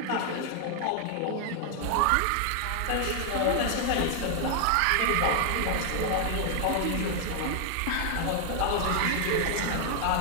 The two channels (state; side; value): different; both; correlation 0.00